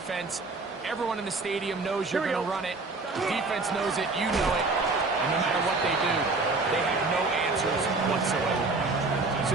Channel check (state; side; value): quieter; left; 3.6 dB